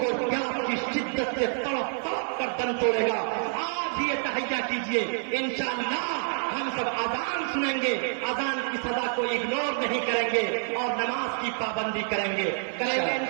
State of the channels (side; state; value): left; silent; 60 dB below the other